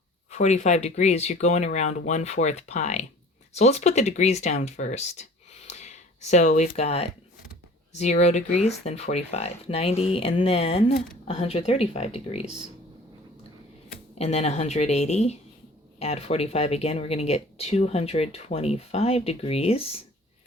45 degrees, you're going around 1/4 pi. So let's put the degrees down first. So we've got 0 degrees, then 45, 90, and then 135 degrees. And then 180, add 45 again, we're going to get 225 degrees,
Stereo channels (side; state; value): both; normal; correlation 0.48